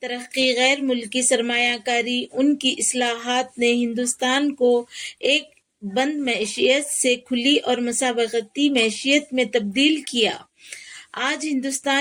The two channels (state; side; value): identical; both; correlation 1.00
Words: ترقی، غیر ملکی سرمایہ کاری، ان کی اصلاحات نے ہندوستان کو ایک بند معیشت سے کھلی اور مسابقتی معیشت میں تبدیل کیا۔ آج